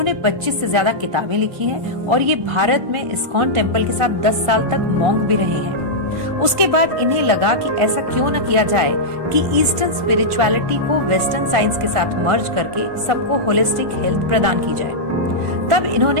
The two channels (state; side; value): late; left; 1.5 ms